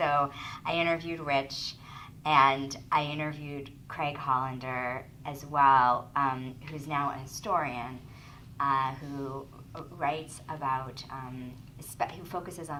I interviewed Rich, and I interviewed Craig Hollander as well, who's now a historian, who writes about, who focuses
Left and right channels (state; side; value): identical; both; correlation 1.00